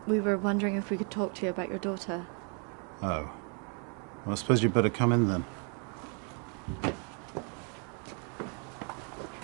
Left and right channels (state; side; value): quieter; left; 38.5 dB